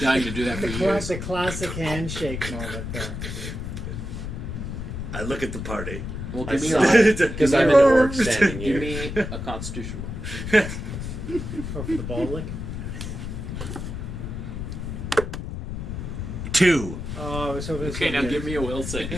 to do that for years. The classic handshake moment there. I look at the party. Well, I give me saw a, it, because I'm an orc standing give here. me a constitution Oh, for the ball lick. 2. Oh, I was hoping. It was Okay, gonna now be give me a will save.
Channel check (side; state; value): left; noise; rumble, 6 dB below the sound